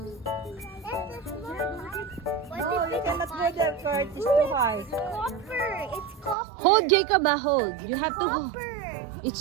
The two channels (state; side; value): drops out; left; at 6.4 s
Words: No, you cannot go there, Kurt. It's too high. Copper. It's copper. Hold, Jacob, hold. You have to hold. Copper.